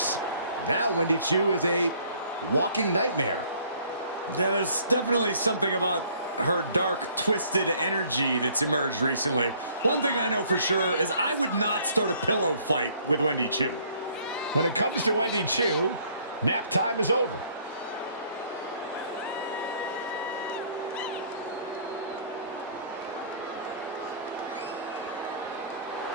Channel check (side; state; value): both; inverted; correlation -0.59